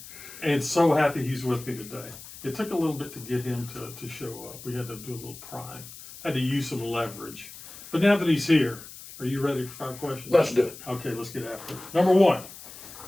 and so happy he's with me today. It took a little bit to get him to show up. We had to do a little prying, had to use some leverage. But now that he's here, are you ready for 5 questions? Let's do it. Okay, let's get after it. Number 1,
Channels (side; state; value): left; noise; hiss, 15 dB below the sound